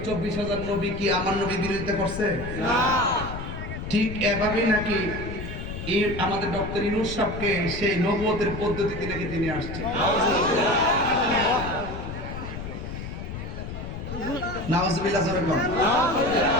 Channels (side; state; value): left; noise; rumble, 8 dB below the sound